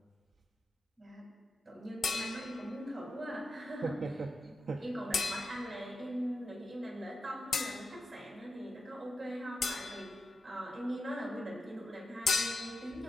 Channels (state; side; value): normal; both; correlation 0.89